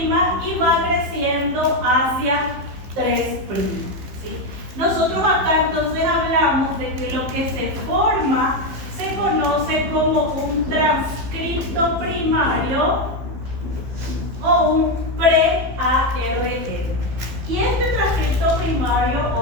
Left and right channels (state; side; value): late; left; 15 ms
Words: y va creciendo hacia 3'. ¿Sí? Nosotros acá entonces hablamos de que lo que se forma se conoce como un transcripto primario o un pre-ARN. Y este transcripto primario